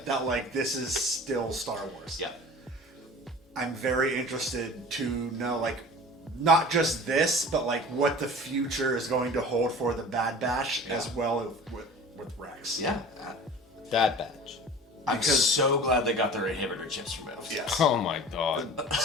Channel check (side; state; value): both; normal; correlation 0.40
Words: That like this is still Star Wars. Yeah. I'm very interested to know like not just this, but like what the future is going to hold for the Bad Batch as well with Rex. Yeah. That badge. I'm Because- so glad they got their inhibitor chips removed. Yes. Oh my god.